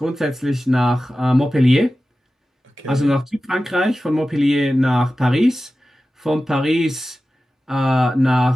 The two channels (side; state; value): both; normal; correlation 0.95